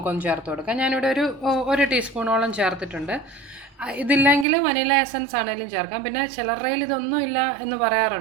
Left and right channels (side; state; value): left; drops out; at 4.5 s